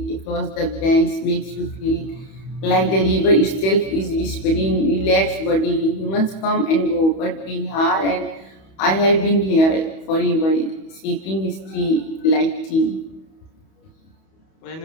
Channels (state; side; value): late; right; 31 ms